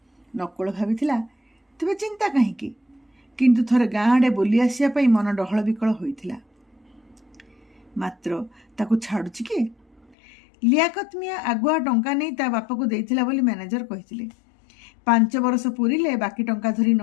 ନକୁଳ ଭାବିଥିଲା ତେବେ ଚିନ୍ତା କାହିଁକି, କିନ୍ତୁ ଥରେ ଗାଁ ଆଡ଼େ ବୁଲି ଆସିବା ପାଇଁ ମନ ଡହଳ ବିକଳ ହୋଇଥିଲା। ମାତ୍ର ତାକୁ ଛାଡ଼ୁଛି କିଏ? ଲିଆକତ ମିଆଁ ଆଗୁଆ ଟଙ୍କା ନେଇ ତା ବାପାକୁ ଦେଇଥିଲା ବୋଲି ମ୍ୟାନେଜର କହିଥିଲେ। 5 ବର୍ଷ ପୁରିଲେ ବାକି ଟଙ୍କା ଧରି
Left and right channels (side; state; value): right; drops out; at 10.2 s